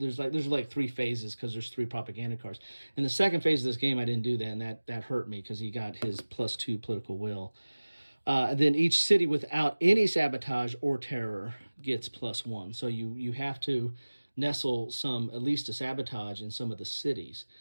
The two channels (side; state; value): both; inverted; correlation -1.00